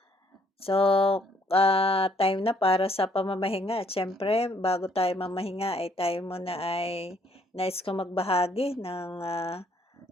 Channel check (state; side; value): normal; both; correlation 0.65